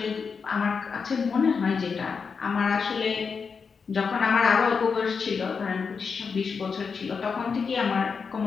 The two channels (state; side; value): quieter; right; 5.5 dB